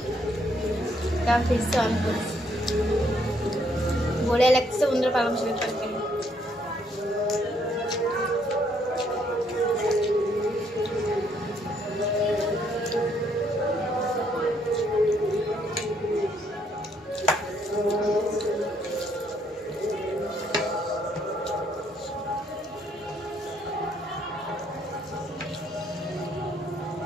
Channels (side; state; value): both; normal; correlation 0.70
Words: তা ফিরছে অন করছি। বলে লাগছে বন্ধুরা পালং শাকের তরকারি।